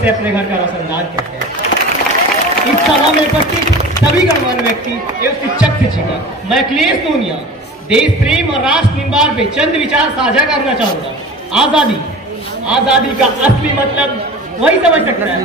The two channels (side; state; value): both; normal; correlation 0.37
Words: अपने घर का रोशनदान कहते हैं। इस सभा में उपस्थित सभी गणमान्य व्यक्ति एवं शिक्षक शिक्षिका, मैं अखिलेश सोनिया देश प्रेम और राष्ट्र निर्माण पे चंद विचार साझा करना चाहूंगा। आजादी का असली मतलब वही समझ सकता है